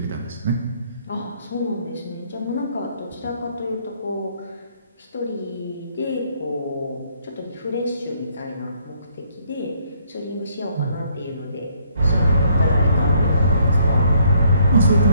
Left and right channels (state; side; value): inverted; both; correlation -0.67